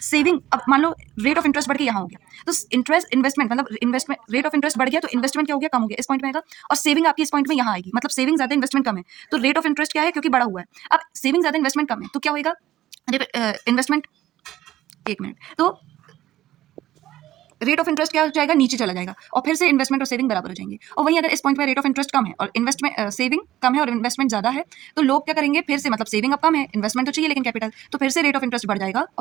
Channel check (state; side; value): quieter; left; 14.1 dB